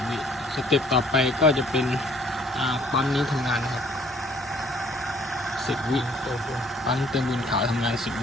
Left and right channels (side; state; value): both; normal; correlation 0.59